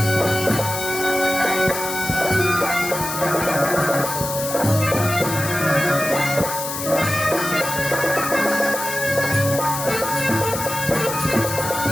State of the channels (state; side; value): noise; left; hiss, 6 dB below the sound